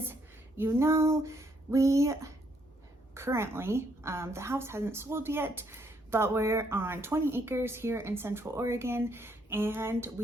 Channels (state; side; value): normal; both; correlation 0.72